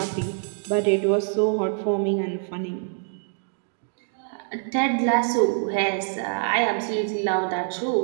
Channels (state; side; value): silent; left; digital silence